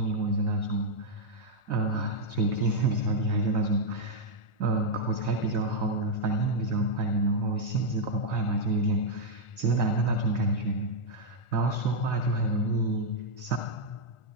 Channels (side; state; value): right; late; 1.4 ms